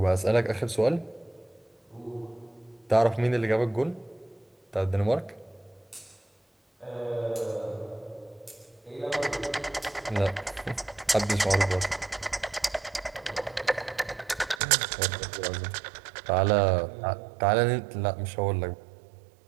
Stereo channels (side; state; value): left; drops out; at 14.6 s